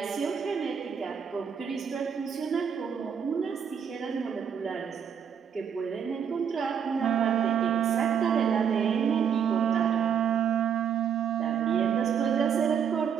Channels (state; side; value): quieter; left; 7.6 dB